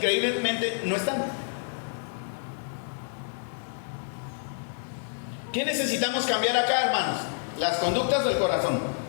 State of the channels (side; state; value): right; silent; digital silence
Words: no están. ¿Qué necesitamos cambiar acá, hermanos? ¿Las conductas o el corazón?